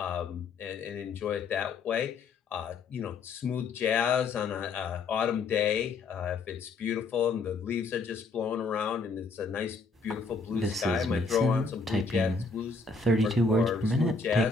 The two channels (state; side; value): quieter; right; 4.1 dB